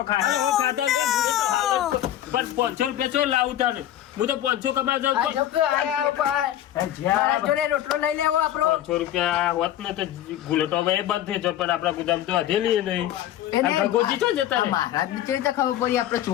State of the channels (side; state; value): right; quieter; 12.2 dB